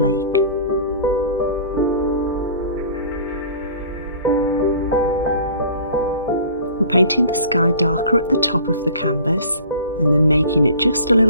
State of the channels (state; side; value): inverted; both; correlation -0.45